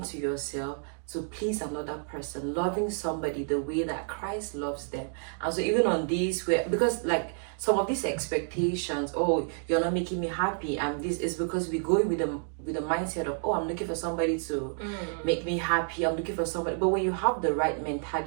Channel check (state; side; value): silent; left; 58 dB below the other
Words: to yourself to please another person, loving somebody the way that Christ loves them. And so even on these, because like some of these expectations, oh, you're not making me happy, and this is because we go with the mindset of, oh, I'm looking for somebody to make me happy, I'm looking for somebody. But when you have the right